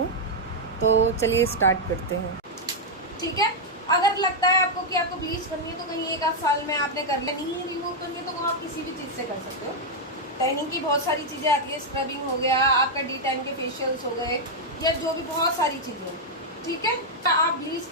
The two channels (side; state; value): both; normal; correlation -0.02